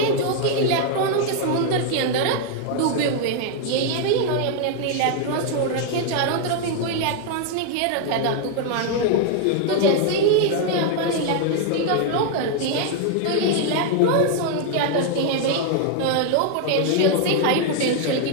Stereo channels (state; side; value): different; both; correlation 0.00